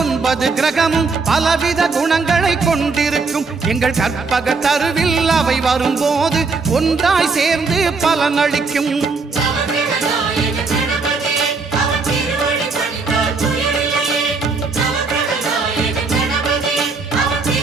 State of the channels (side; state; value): left; quieter; 4.3 dB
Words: கிரகமும் பலவித குணங்களை கொண்டிருக்கும். எங்கள் கற்பக தருவில் அவை வரும்போது ஒன்றாய் சேர்ந்து பலனளிக்கும்.